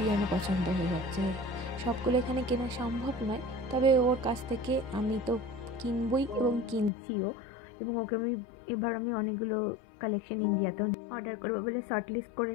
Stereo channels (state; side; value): drops out; right; at 6.9 s